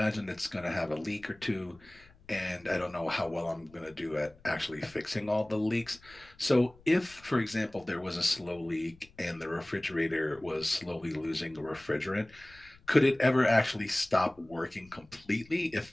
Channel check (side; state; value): left; noise; rumble, 26 dB below the sound